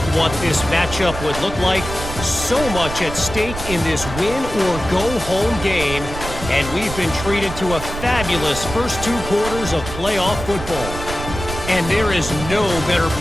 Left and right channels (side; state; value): right; noise; rumble, 9 dB below the sound